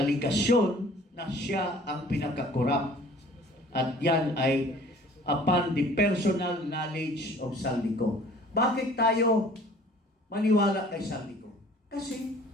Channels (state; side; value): normal; both; correlation 0.51